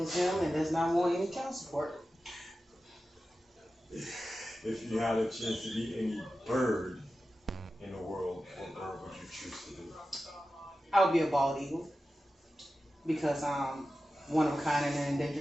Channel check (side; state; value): both; normal; correlation 0.93